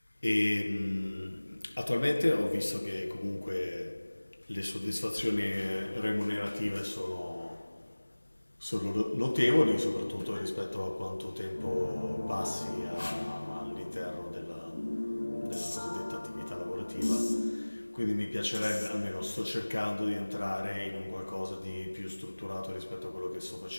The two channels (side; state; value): both; inverted; correlation -1.00